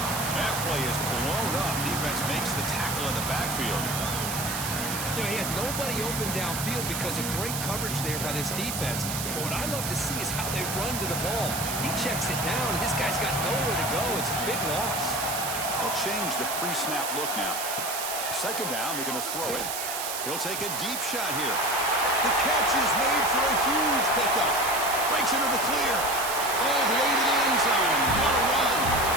That play is blown up. Defense makes the tackle in the backfield. You know, he had nobody open downfield because of great coverage there by this defense. But what I love to see is how they run to the ball. He checks it down, and this guy's got nowhere to go. It's a big loss. They'll change the pre-snap look now. 2nd down, they're going to throw it. He'll take a deep shot here. The catch is made for a huge pickup. Breaks into the clear. All the way to the end zone. What a run.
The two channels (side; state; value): right; noise; hiss, 4 dB below the sound